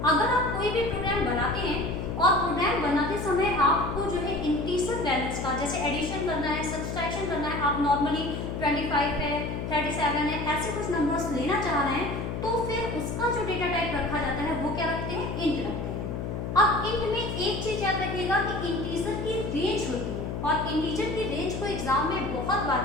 अगर आप कोई भी प्रोग्राम बनाते हैं और प्रोग्राम बनाते समय आपको जो है इंटीजर वैल्यूज का, जैसे एडिशन करना है, सब्सट्रैक्शन करना है, आप नॉर्मली 25 है, 37 है, ऐसे कुछ नंबर्स लेना चाह रहे हैं, तो फिर उसका जो डेटा टाइप रखा जाता है वो क्या रखते हैं, इंट रखते हैं। अब इंट में एक चीज याद रखिएगा कि इंटीजर की रेंज होती है और इंटीजर की रेंज को एग्जाम में बहुत बार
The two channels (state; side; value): noise; left; hum, 4 dB below the sound